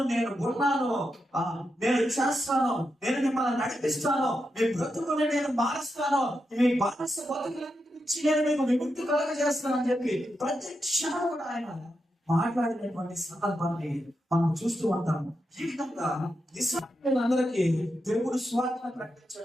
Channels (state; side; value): normal; both; correlation 0.86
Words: నేను ఉన్నాను, నేను చేస్తాను, నేను మిమ్మల్ని నడిపిస్తాను, మీ బ్రతుకుని నేను మారుస్తాను, మీ బానిస బతుకుల నుంచి నేను మీకు విముక్తి కలుగజేస్తాను అని చెప్పి ప్రతి క్షణం కూడా ఆయన మాట్లాడినటువంటి సందర్భాన్ని మనం చూస్తూ ఉంటాము. ఈ విధంగా ఇశ్రాయేలీయులందరికీ దేవుడు సువార్తను